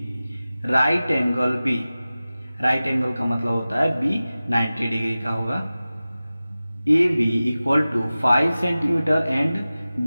right angle B. Right angle का मतलब होता है बी 90 डिग्री का होगा। A B equal to 5 centimetre and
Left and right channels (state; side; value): inverted; both; correlation -0.96